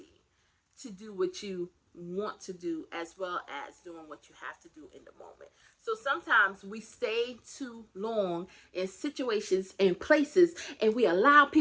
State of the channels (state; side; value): identical; both; correlation 1.00